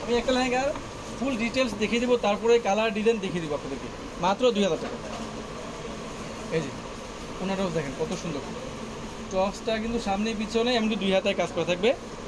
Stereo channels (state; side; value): identical; both; correlation 1.00